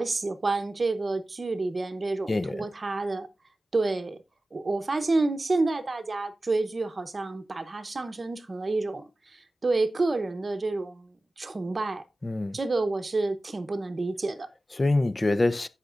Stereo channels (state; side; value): normal; both; correlation 0.95